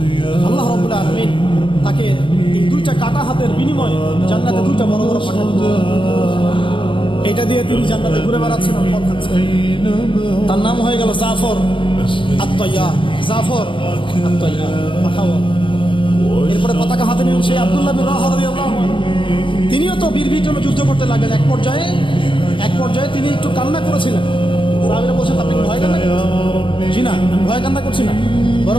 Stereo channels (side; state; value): right; late; 0.25 ms